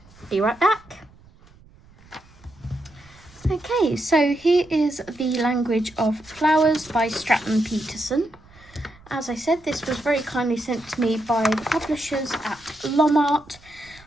Be right back. Okay, so here is The Language of Flowers by Stratton Peterson. As I said, this was very kindly sent to me by the publishers at Lom Art.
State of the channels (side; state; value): right; noise; rumble, 26 dB below the sound